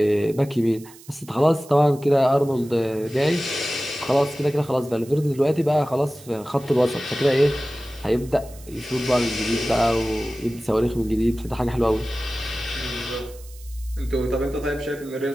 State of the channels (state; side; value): noise; right; hiss, 22 dB below the sound